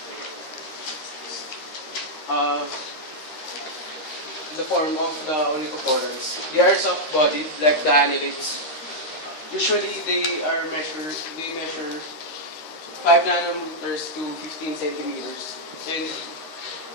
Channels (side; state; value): right; late; 13 ms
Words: Uh, the form of the onychophorans. They are soft-bodied like the annelids. Usually they measure 5 nanometers to 15 centimeters, and